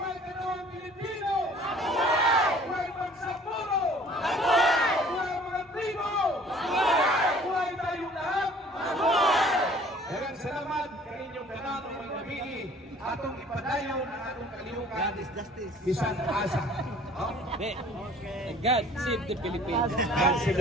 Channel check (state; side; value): normal; both; correlation 0.52